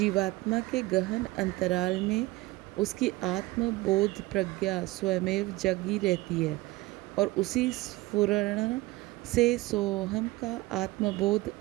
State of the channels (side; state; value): left; quieter; 20.1 dB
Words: के गहन अंतराल में उसकी आत्मबोध प्रज्ञा स्वयमेव जगी रहती है और उसी स्फुरण से सोहम का आत्मबोध